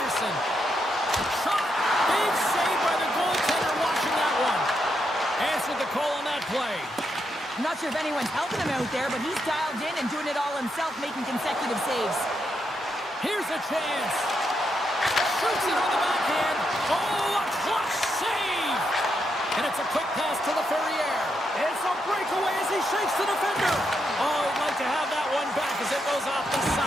Shot. Big save by the goaltender watching that one. Answered the call on that play. I'm not sure if anyone's helping him out there, but he's dialed in and doing it all himself, making consecutive saves. Here's a chance. Shoots it on the backhand. Oh, a clutch save. And it's a quick pass to LaFerriere. It's a breakaway as he shakes the defender. Oh, he'd like to have that one back as it goes off the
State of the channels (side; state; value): both; normal; correlation 0.81